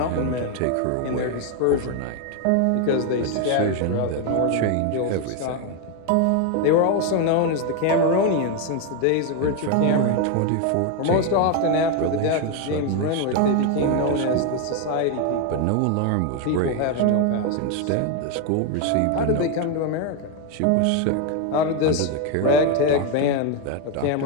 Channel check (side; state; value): both; different; correlation 0.01